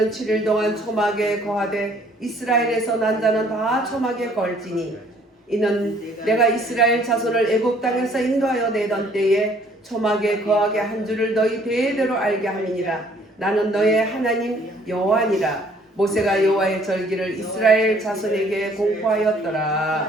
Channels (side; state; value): both; normal; correlation 0.60